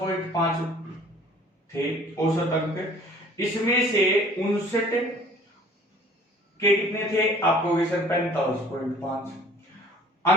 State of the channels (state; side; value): normal; both; correlation 0.51